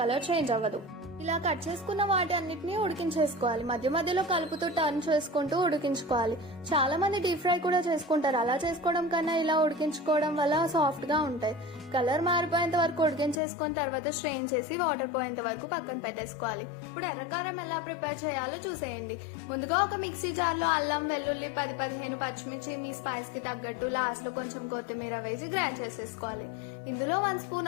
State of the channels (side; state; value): right; drops out; at 13.4 s